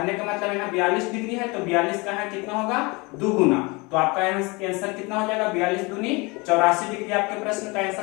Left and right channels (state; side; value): quieter; right; 26.5 dB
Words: का मतलब यहाँ 42 डिग्री है तो 42 का है कितना होगा दुगुना। तो आपका आंसर कितना हो जाएगा 42 दूनी 84 डिग्री आपके प्रश्न का